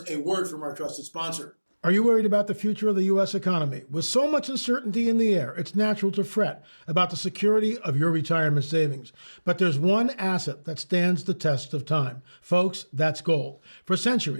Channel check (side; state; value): both; inverted; correlation -1.00